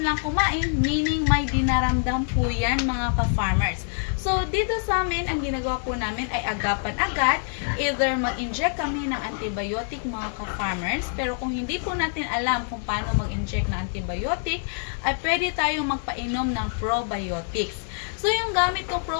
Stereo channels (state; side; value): silent; right; 61 dB below the other